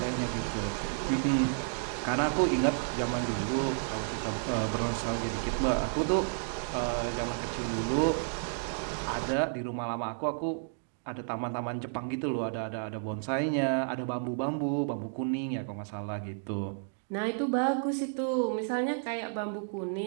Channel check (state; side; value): silent; left; digital silence